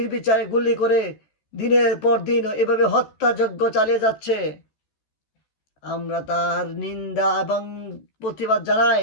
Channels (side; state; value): right; late; 14 ms